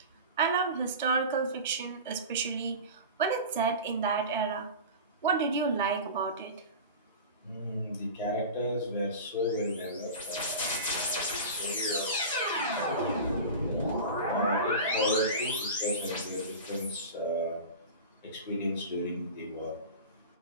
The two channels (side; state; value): both; inverted; correlation -0.31